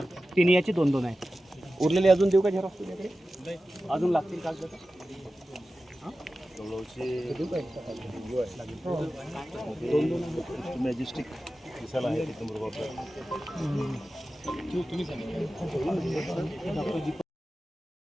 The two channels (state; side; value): normal; both; correlation 0.94